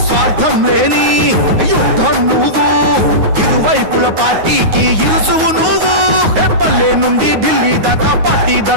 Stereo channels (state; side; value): late; left; 9.5 ms